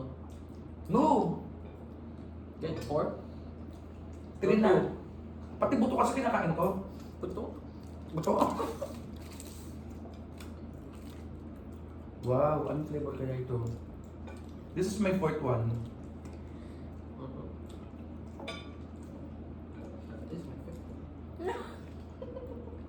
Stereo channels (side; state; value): both; identical; correlation 1.00